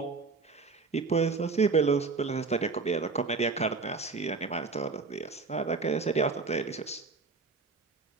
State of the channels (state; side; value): quieter; left; 4.3 dB